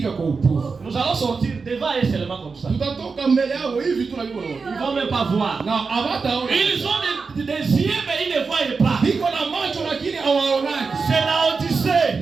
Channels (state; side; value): quieter; left; 4.7 dB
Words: kwa upofu. Nous allons sortir devant eux seulement comme ça. Tutatoka mbele yao hivi tunajua. Ils vont même pas voir. Na hawataona. Ils ont des yeux mais ils ne voient pas. Biko na macho lakini hawaonaki. C'est la